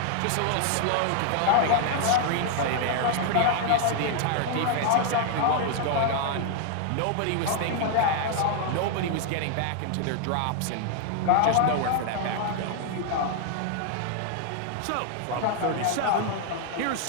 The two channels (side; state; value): both; different; correlation 0.00